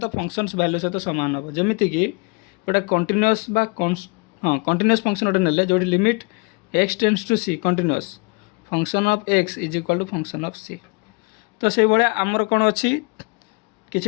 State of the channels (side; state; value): right; quieter; 30.0 dB